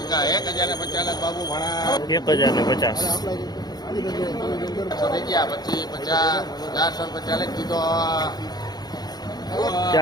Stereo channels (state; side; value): late; right; 0.19 ms